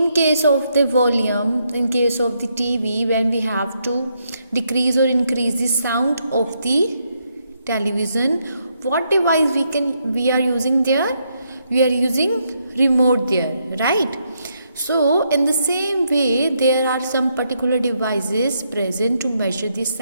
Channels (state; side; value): inverted; both; correlation -0.77